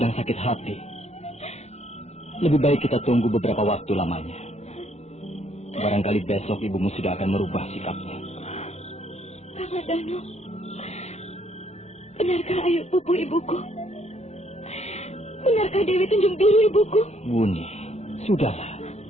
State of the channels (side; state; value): right; late; 0.32 ms